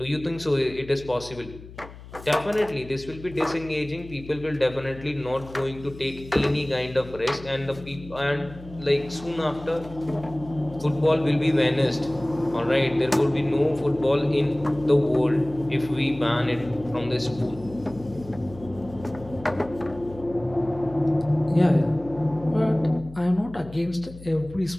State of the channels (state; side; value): noise; left; hum, 17 dB below the sound